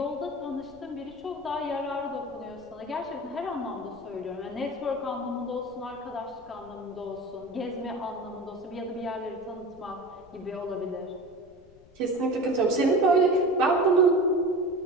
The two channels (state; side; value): noise; left; rumble, 26 dB below the sound